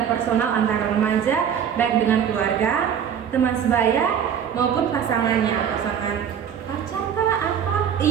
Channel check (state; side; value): quieter; left; 8.4 dB